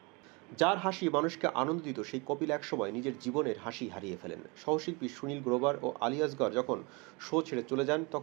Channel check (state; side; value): quieter; left; 28.6 dB